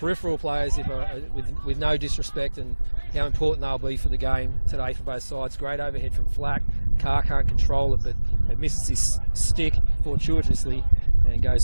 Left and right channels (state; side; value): inverted; both; correlation -1.00